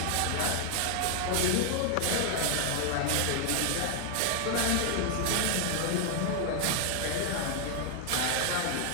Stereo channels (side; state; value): both; different; correlation 0.00